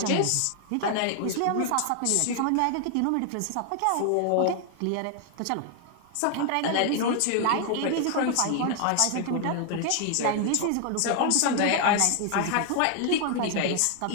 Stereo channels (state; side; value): different; both; correlation 0.00